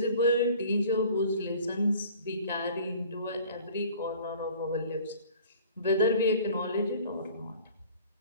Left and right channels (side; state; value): both; inverted; correlation -0.48